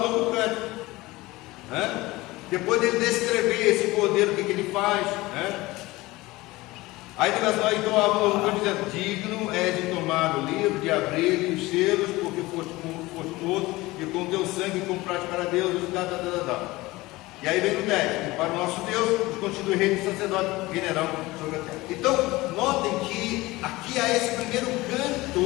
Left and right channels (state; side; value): quieter; right; 20.1 dB